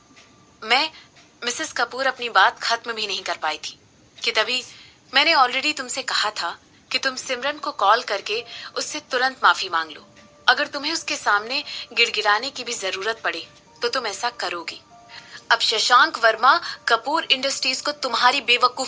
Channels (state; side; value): identical; both; correlation 1.00